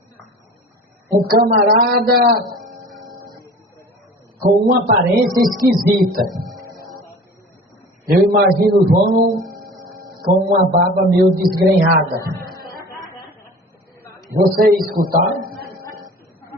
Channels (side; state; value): both; normal; correlation 0.42